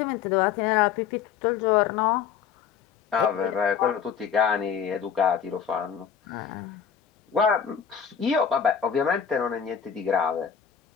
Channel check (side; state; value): right; quieter; 7.6 dB